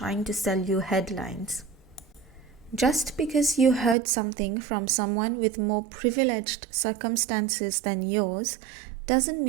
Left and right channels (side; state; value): left; drops out; at 4.0 s